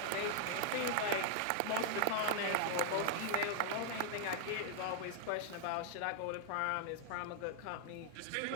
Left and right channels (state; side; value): different; both; correlation 0.00